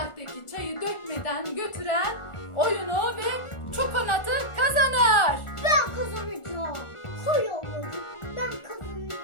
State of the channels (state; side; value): late; right; 1.4 ms